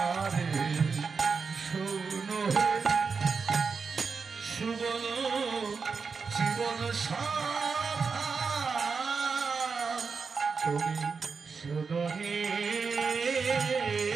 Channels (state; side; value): quieter; left; 5.2 dB